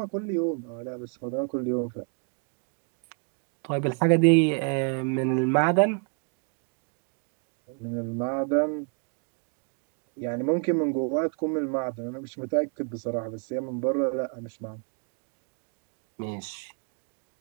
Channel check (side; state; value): left; quieter; 39.4 dB